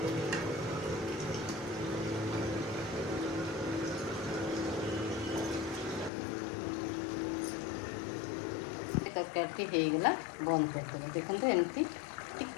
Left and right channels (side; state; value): right; drops out; at 6.1 s